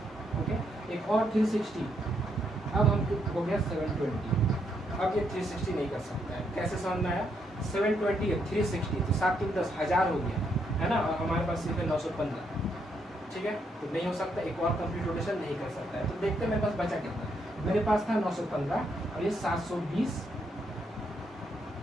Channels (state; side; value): normal; both; correlation 0.76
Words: ओके, एक और 360, अब हम हो गया 720। अब ये 360 नहीं कर सकता है, कैसे समझ में आया, 720 है 360 तो 7 3 10 1000 हो गया है ना, और हमारे पास सिर्फ है 915, ठीक है, तो नहीं हो सकता, एक और कंप्लीट रोटेशन नहीं कर सकता है। तो देखते हैं मेरे पास बचा कितना, मेरे पास था 915 और ये 720